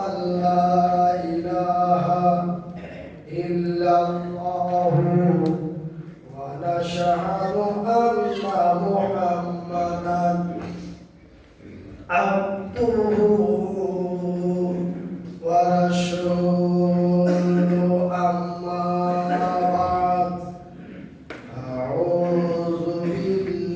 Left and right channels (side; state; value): both; identical; correlation 1.00